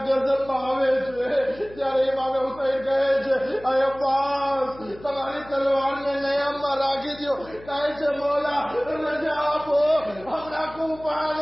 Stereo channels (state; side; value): noise; left; hum, 20 dB below the sound